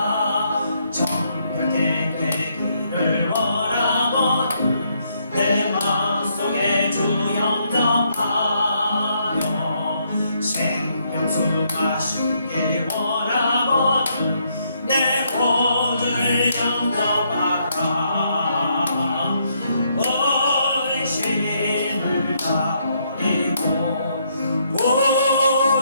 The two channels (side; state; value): both; inverted; correlation -0.74